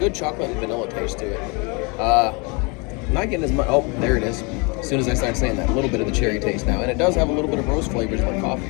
chocolate and vanilla taste to it. I'm not getting as much. Oh, there it is. As soon as I start saying that, a little bit of the cherry taste now, and it does have a little bit of roast flavors like coffee.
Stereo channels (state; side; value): quieter; right; 30.6 dB